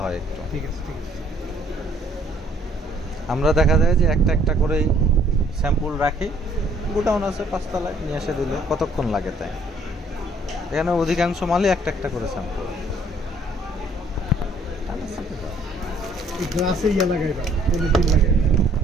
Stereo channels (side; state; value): both; normal; correlation 0.61